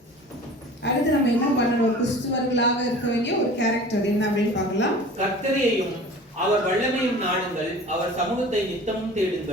அடுத்து நம்ம என்ன பண்ணணும்? ஒரு கிறிஸ்துவர்களாக இருக்க வேண்டிய ஒரு கேரக்டர் என்ன அப்படின்னு பார்க்கலாம். கர்த்தரையும் அவர் வல்லமையும் நாடுங்கள், அவர் சமூகத்தை நித்தமும்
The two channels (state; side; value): normal; both; correlation 0.42